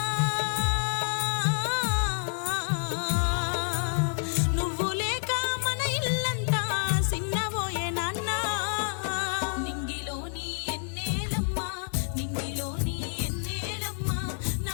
నువ్వు లేక మన ఇల్లంతా సిన్నబోయే నాన్న. నింగిలోని ఎన్నేలమ్మా, నింగిలోని ఎన్నేలమ్మా,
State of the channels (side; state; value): right; silent; 59 dB below the other